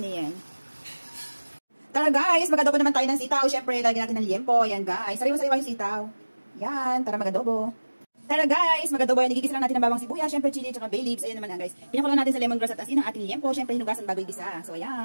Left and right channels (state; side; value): inverted; both; correlation -1.00